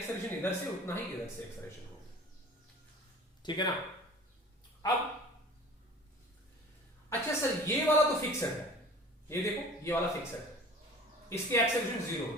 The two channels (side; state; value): both; normal; correlation 0.43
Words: इधर से उतना ही इधर से एक्सेलरेशन होगी, ठीक है ना। अब अच्छा सर ये वाला तो फिक्स्ड है, ये देखो ये वाला फिक्स्ड है, इसकी एक्सेलरेशन 0